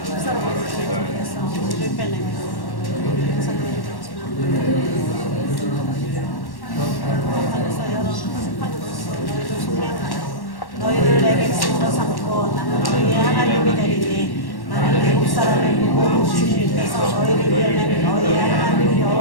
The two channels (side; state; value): right; late; 1.1 ms